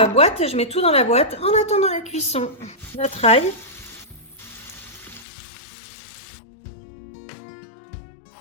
boîte, je mets tout dans la boîte en attendant la cuisson. Notre ail.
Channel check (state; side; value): drops out; right; at 5.2 s